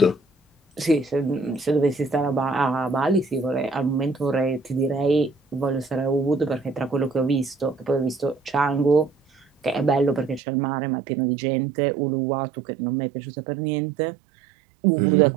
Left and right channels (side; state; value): left; drops out; at 10.4 s